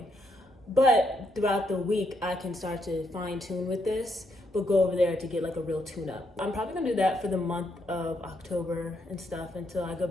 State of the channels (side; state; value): both; normal; correlation 0.76